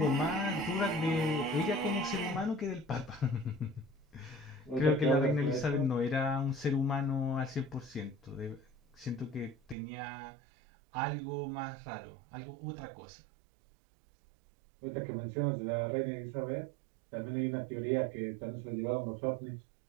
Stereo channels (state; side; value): drops out; left; at 9.8 s